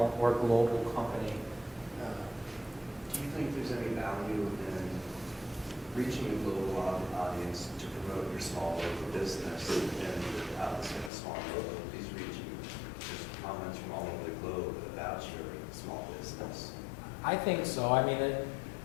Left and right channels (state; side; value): drops out; right; at 11.1 s